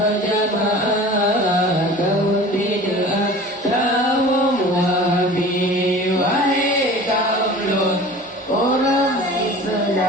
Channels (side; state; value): both; normal; correlation 0.41